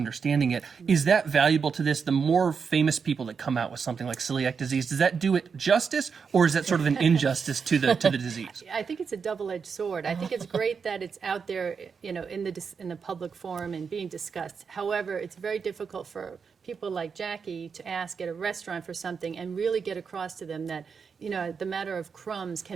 it. Is that valuable to this? The more famous people that come out with something like celiac disease, does that do it justice, or is that sort of an injustice to the disease? I think it's a double-edged sword. I think it's great that it's out there, you know, in the public forum and being discussed. However, it's very difficult for people like Jackie to ask at a restaurant for something and really get across to them that, you know, the matter of crumbs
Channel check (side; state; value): left; quieter; 5.9 dB